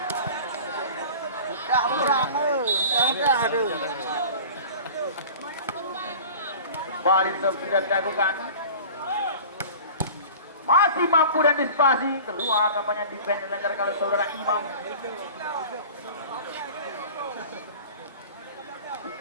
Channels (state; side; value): inverted; both; correlation -0.40